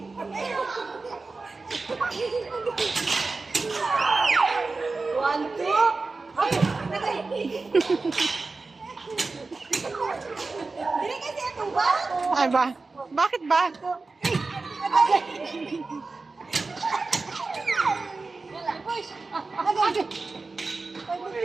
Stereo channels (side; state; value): left; quieter; 3.8 dB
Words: One, two! Agay! Agay! Dili kasi ito ba? Ay ba? Bakit ba? Agay! Push! Agay! Agay!